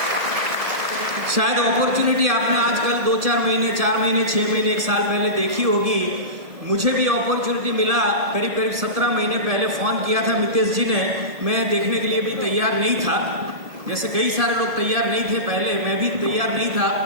शायद अपॉर्चुनिटी आपने आजकल 2-4 महीने, 4 महीने, 6 महीने, 1 साल पहले देखी होगी। मुझे भी अपॉर्चुनिटी मिला, करीब करीब 17 महीने पहले फोन किया था मितेश जी ने। मैं देखने के लिए भी तैयार नहीं था, जैसे कई सारे लोग तैयार नहीं थे पहले, मैं भी तैयार नहीं था।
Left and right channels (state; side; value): late; left; 1.4 ms